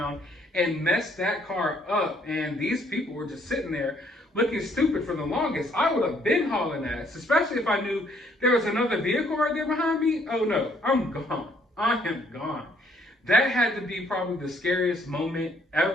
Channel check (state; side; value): normal; both; correlation 0.66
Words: and messed that car up. And these people were just sitting there looking stupid for the longest. I would have been hauling ass, especially if I knew there was another vehicle right there behind me. Oh no, I'm gone. I am gone. That had to be probably the scariest moment